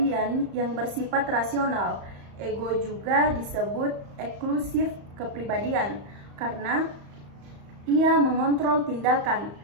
yang bersifat rasional. Ego juga disebut eksklusif kepribadian karena ia mengontrol tindakan,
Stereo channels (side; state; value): left; late; 35 ms